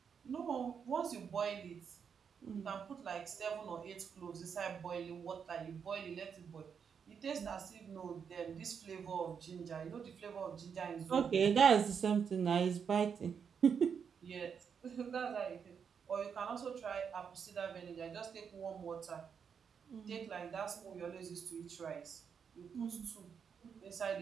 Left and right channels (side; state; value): left; quieter; 6.9 dB